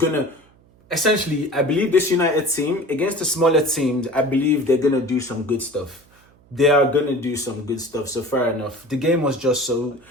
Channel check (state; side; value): noise; right; hum, 30 dB below the sound